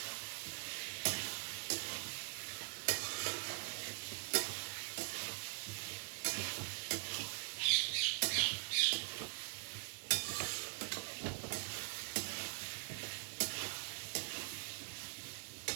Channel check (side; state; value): left; silent; digital silence